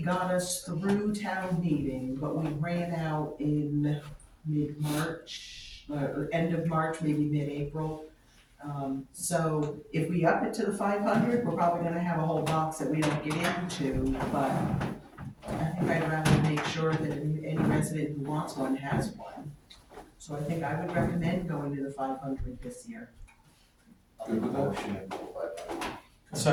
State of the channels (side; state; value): both; identical; correlation 1.00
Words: got us through town meeting, but we ran out in mid-March, end of March, maybe mid-April. So if we up it to the 500, we're probably gonna have a whole box that we don't get into, but I think I'd rather make sure that any resident who wants one has one. So I think I would recommend going to the 500 this year. Good with that? Motion, but